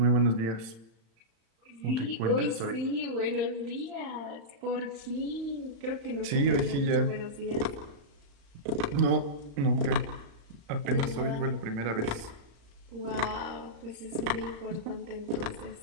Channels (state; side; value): late; left; 35 ms